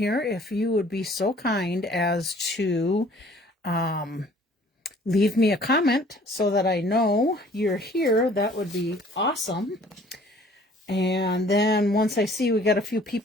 if you would be so kind as to leave me a comment so that I know you're here, that would be awesome. And then once I see we got a few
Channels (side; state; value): both; normal; correlation 0.54